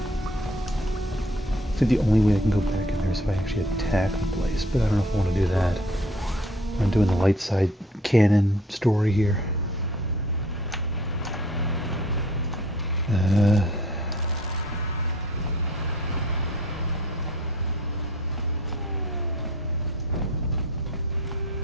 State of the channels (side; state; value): both; normal; correlation 0.53